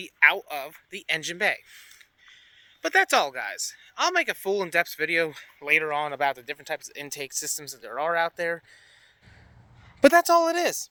out of the engine bay. But that's all, guys. I'll make a full in-depth video later on about the different types of intake systems that there are out there. But that's all it is.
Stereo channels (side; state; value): both; identical; correlation 1.00